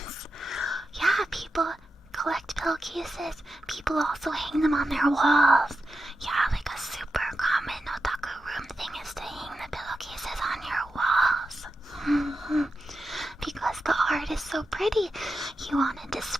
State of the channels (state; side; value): normal; both; correlation 0.89